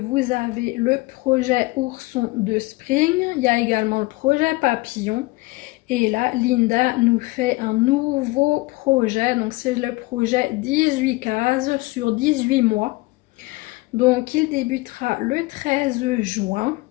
avez le projet Ourson de Spring, il y a également le projet Papillon. Et là, Linda nous fait un nouveau projet. Donc, c'est le projet 18 cases sur 18 mois. Donc, il débutera le 13 juin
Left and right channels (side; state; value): right; quieter; 22.4 dB